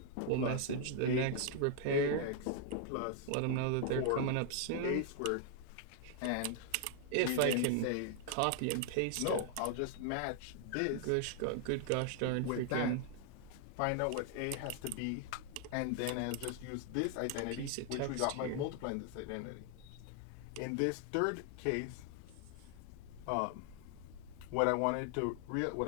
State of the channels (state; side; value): different; both; correlation 0.00